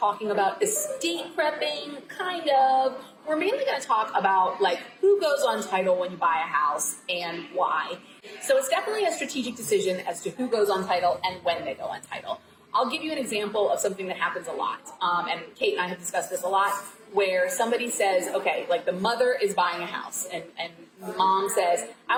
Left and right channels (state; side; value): identical; both; correlation 1.00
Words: about estate prepping, kind of. We're mainly going to talk about like who goes on title when you buy a house and why. So it's definitely a strategic decision as to who goes on title and when they go on title. I'll give you an example of something that happens a lot. And Kate and I have discussed this a lot, where somebody says, okay, like the mother is buying a house and mom says, I